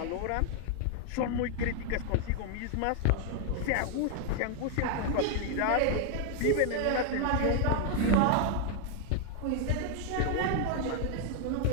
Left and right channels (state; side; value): different; both; correlation 0.00